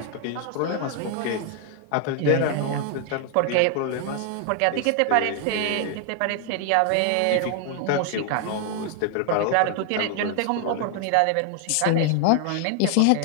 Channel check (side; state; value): both; different; correlation 0.00